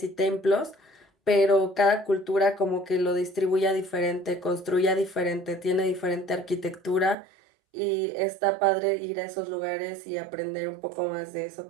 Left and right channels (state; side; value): drops out; left; at 7.2 s